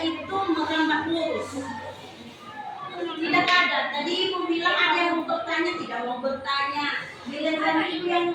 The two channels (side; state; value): both; identical; correlation 1.00